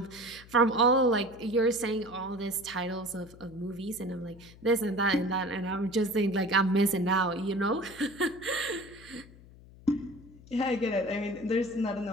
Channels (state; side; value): noise; left; hum, 21 dB below the sound